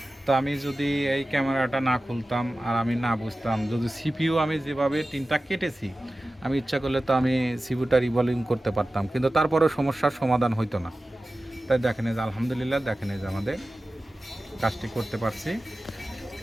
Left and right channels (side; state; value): both; normal; correlation 0.95